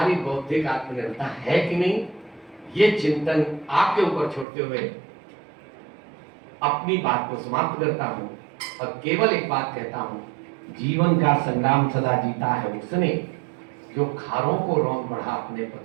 बौद्धिक आत्मनिर्भरता है कि नहीं, ये चिंतन आपके ऊपर छोड़ते हुए अपनी बात को समाप्त करता हूं और केवल एक बात कहता हूं, जीवन का संग्राम सदा जीता है उसने जो खारों को रौंद बढ़ा अपने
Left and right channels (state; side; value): drops out; left; at 4.5 s